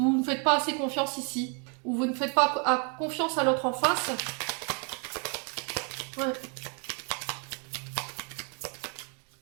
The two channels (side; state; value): left; quieter; 36.2 dB